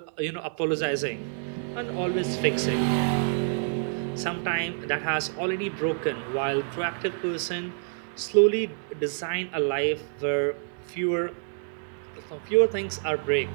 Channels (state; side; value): silent; left; digital silence